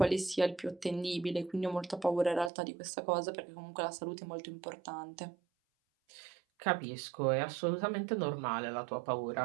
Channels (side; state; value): left; drops out; at 2.5 s